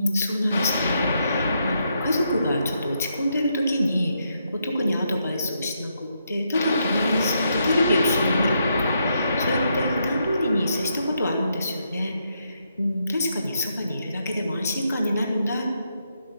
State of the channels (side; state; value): both; inverted; correlation -0.79